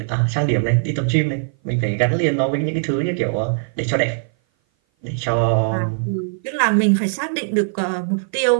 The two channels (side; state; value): left; silent; 57 dB below the other